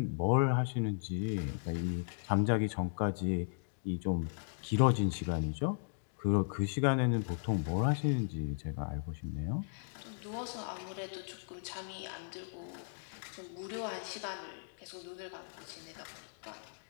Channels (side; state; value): right; silent; digital silence